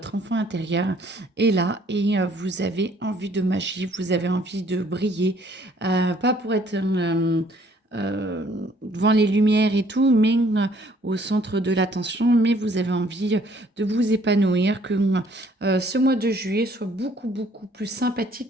enfant intérieur est là et vous avez envie de magie, vous avez envie de briller, pas pour être devant les lumières et tout, mais au centre de l'attention, mais vous avez envie de vous épanouir, que ce mois de juillet soit beaucoup, beaucoup plus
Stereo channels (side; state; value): both; normal; correlation 0.61